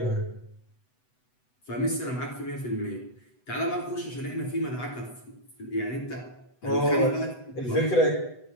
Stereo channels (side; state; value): right; late; 8.0 ms